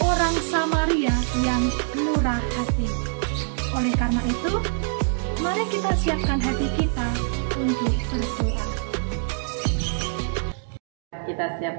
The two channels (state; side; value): silent; left; digital silence